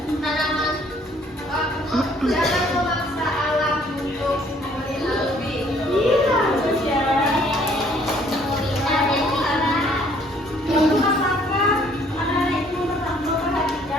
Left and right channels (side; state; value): both; normal; correlation 0.61